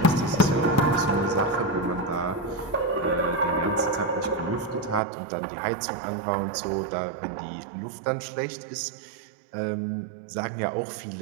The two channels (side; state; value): left; drops out; at 5.0 s